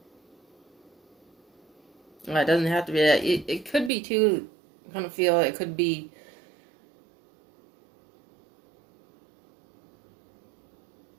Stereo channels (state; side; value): drops out; left; at 3.9 s